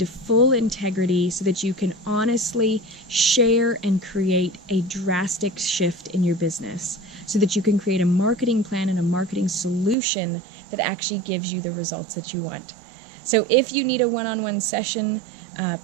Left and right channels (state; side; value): drops out; left; at 10.0 s